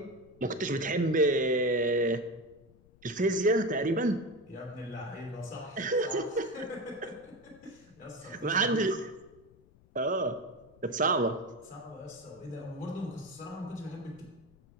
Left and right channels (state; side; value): noise; left; rumble, 27 dB below the sound